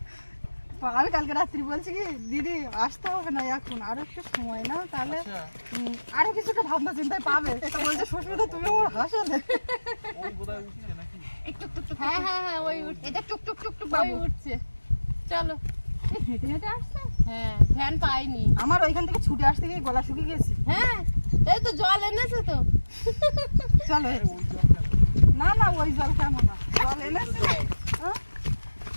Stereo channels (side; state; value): both; inverted; correlation -1.00